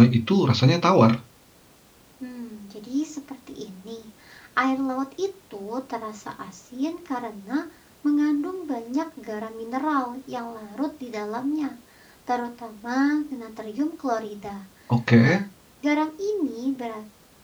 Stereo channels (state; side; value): identical; both; correlation 1.00